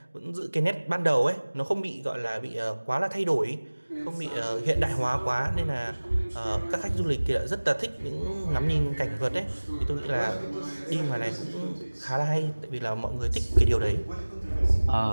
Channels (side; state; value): both; inverted; correlation -1.00